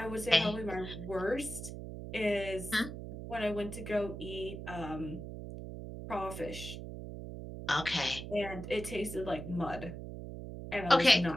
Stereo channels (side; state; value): right; noise; hum, 9 dB below the sound